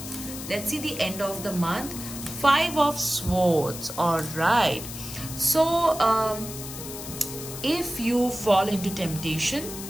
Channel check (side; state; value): left; noise; hiss, 10 dB below the sound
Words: Let's see the end of the month. 5 of Swords, all right. So if you fall into temptation,